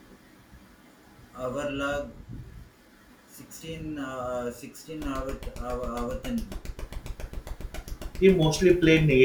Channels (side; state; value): both; identical; correlation 1.00